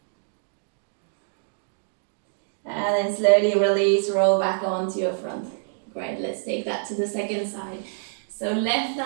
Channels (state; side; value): silent; left; digital silence